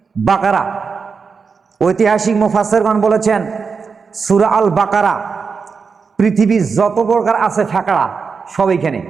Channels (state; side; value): quieter; left; 5.3 dB